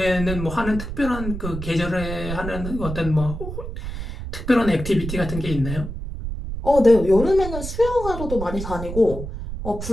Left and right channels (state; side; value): noise; right; rumble, 7 dB below the sound